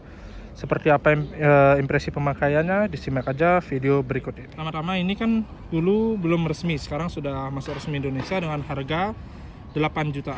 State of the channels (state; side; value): identical; both; correlation 1.00